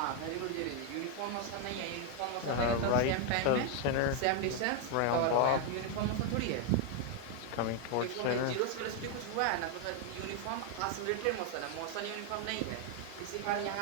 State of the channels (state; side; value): different; both; correlation 0.01